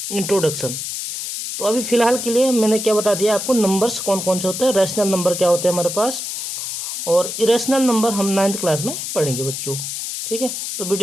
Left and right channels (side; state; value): left; noise; hiss, 5 dB below the sound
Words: इंट्रोडक्शन। तो अभी फिलहाल के लिए मैंने क्या बता दिया आपको, नंबर्स कौन कौन से होते हैं, रैशनल नंबर क्या होते हैं हमारे पास, और इरेशनल नंबर हम 9th क्लास में पढ़ेंगे बच्चों। ठीक है, तो